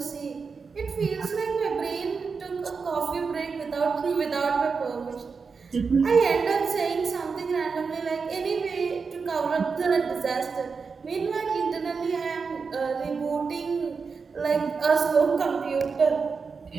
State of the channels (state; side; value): quieter; left; 5.1 dB